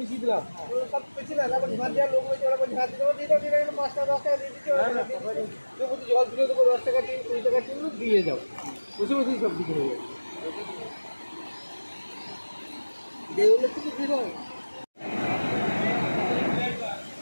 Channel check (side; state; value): both; inverted; correlation -1.00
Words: বেশি দিলাম। সব বেশি না, তারপর ঝাঁট দেওয়ার লোক হয়েছে, ওরা ঝাঁট দিতে দিয়ে 5 টাকা 10 টাকা দিয়ে দিচ্ছে। জল দিলে তো 10 টাকা 20 টাকা টিন দিয়ে যাও, বসে বসেই সব দিকে হয়ে যাবে।